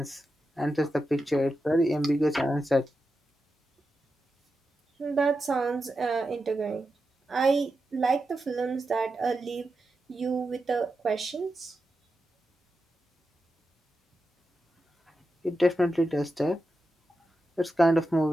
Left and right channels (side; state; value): both; normal; correlation 0.89